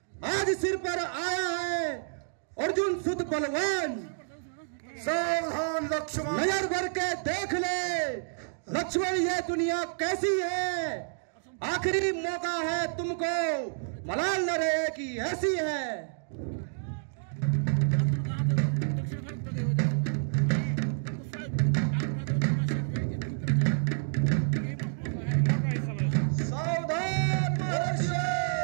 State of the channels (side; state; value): left; silent; digital silence